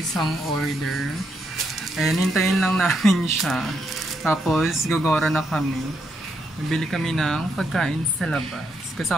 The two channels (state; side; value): normal; both; correlation 0.78